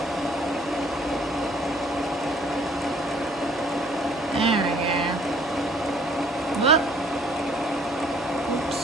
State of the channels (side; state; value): both; normal; correlation 0.59